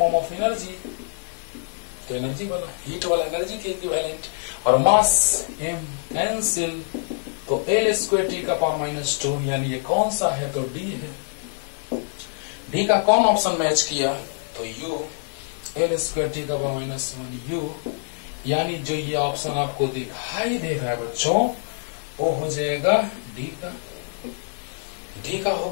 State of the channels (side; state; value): right; silent; digital silence